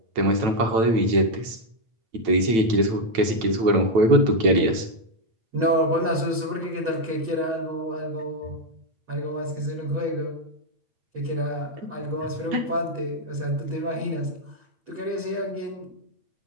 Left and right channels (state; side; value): late; left; 9.0 ms